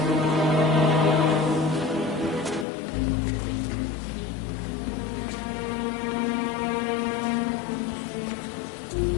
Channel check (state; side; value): drops out; right; at 2.7 s